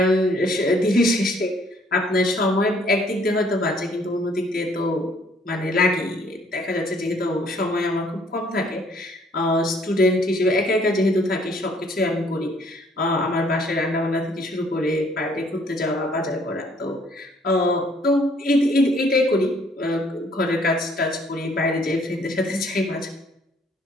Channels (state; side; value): normal; both; correlation 0.62